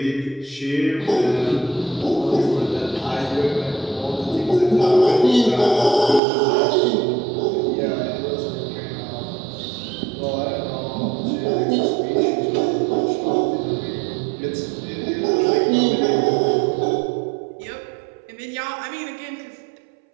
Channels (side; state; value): left; drops out; at 6.2 s